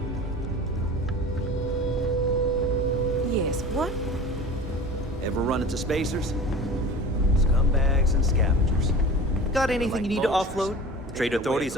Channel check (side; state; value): both; normal; correlation 0.37